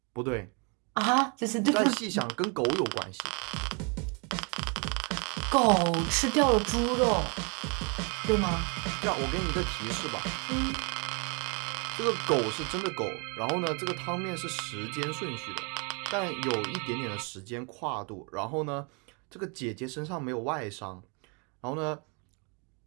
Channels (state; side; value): quieter; left; 34.4 dB